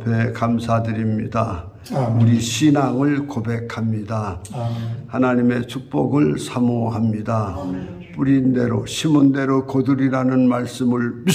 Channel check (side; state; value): both; identical; correlation 1.00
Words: 감사드립니다. 우리 신앙을 고백합니다. 하나님의 축복을 사모합니다. 뿌린 대로 심은 대로 거두리라는 말씀을